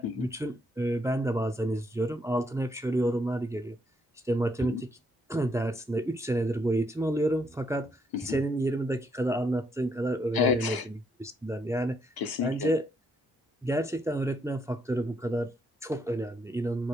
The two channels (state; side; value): normal; both; correlation 0.74